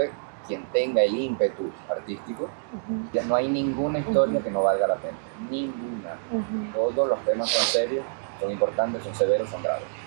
quien tenga el ímpetu artístico, ya no hay ninguna historia que no valga la pena. Ninguna. Todos los temas son serios, son importantes, son severos, son graves.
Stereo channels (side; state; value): left; silent; digital silence